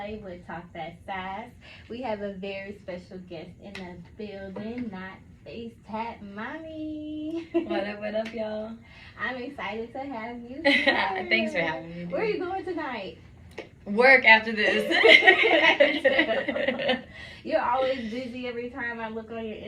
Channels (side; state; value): both; identical; correlation 1.00